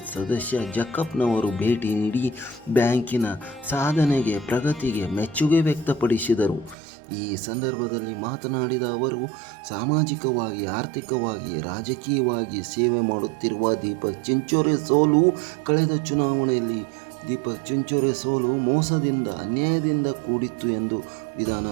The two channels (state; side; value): drops out; left; at 6.8 s